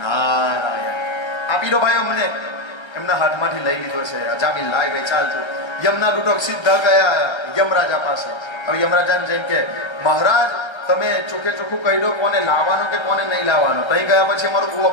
નારાયણ. આપી દો ભાઈ અમને. એમના હાથમાંથી લઈ લીધો છે. અજામિલ લાય ભાઈ ચાલતું. યમના લૂંટક સીધા ગયા યમરાજા પાસે. હવે યમરાજાને જઈને કે મહારાજ તમે ચોખ્ખે ચોખ્ખું કહી દો કોને લાવવાનું કે કોને નહીં લાવવાનું. ત્યાં ગયા પછી અમારું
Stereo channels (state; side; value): late; right; 1.3 ms